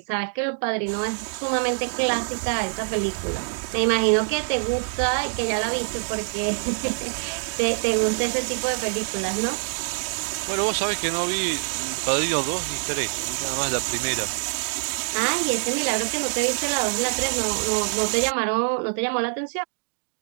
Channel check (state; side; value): silent; left; digital silence